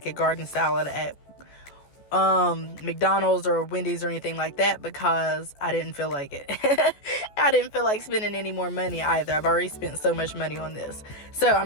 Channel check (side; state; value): right; late; 14 ms